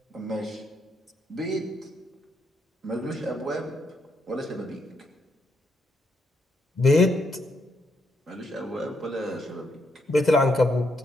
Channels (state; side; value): normal; both; correlation 0.77